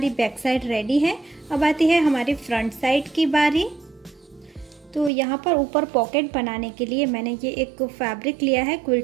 बैक साइड रेडी है। अब आती है हमारी फ्रंट साइड की बारी। तो यहाँ पर ऊपर पॉकेट बनाने के लिए मैंने ये एक फैब्रिक लिया है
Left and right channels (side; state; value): left; drops out; at 5.1 s